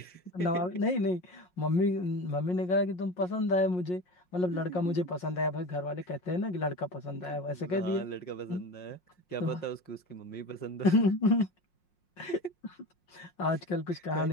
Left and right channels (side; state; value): right; late; 5.6 ms